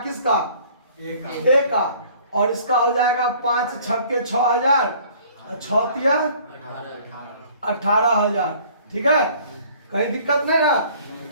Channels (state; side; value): inverted; both; correlation -0.54